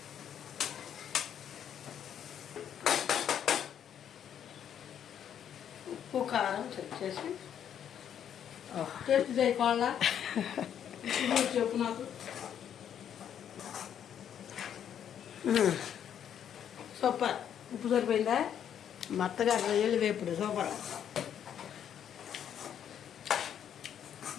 కారం చెక్ చేసి టేస్ట్ చేయకోవాలా చెప్పు నాకు. సూపర్. ఉప్పు సరిపోయిందా? మెత్తగా రొయ్యలు వేపుడు సూపర్.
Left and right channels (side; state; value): right; quieter; 9.3 dB